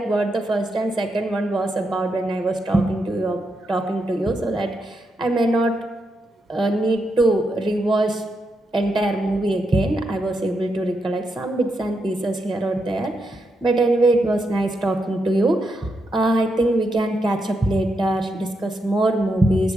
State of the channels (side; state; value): both; normal; correlation 0.83